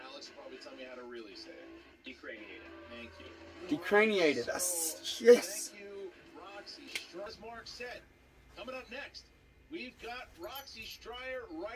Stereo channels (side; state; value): both; identical; correlation 1.00